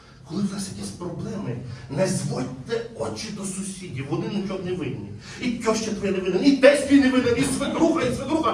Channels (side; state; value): both; identical; correlation 1.00